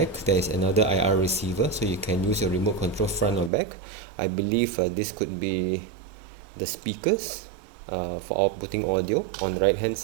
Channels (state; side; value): drops out; left; at 3.5 s